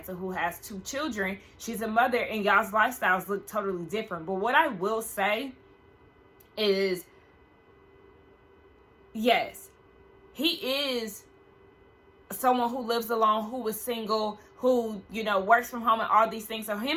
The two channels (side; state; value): both; identical; correlation 1.00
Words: who has 2 children. She's a mother and y'all's lifestyles look totally different. But what I will say is, yes, he is someone who lives alone, who is single, who, you know, works from home and all these things. So